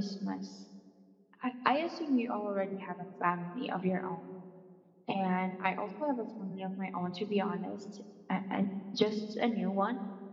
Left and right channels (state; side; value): identical; both; correlation 1.00